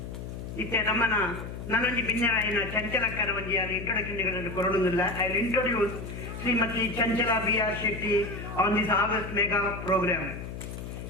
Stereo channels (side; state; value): left; noise; hum, 9 dB below the sound